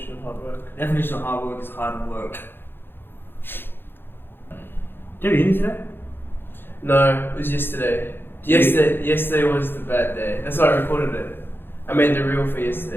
of hard work? Definition of hard work is hard work. Did you eat today? No, it was yesterday. Yesterday was the bad day. That's why I recorded it. I made the reel for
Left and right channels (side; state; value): right; late; 0.10 ms